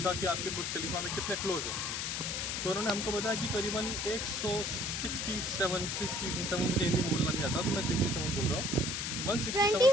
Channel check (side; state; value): left; noise; hiss, 2 dB below the sound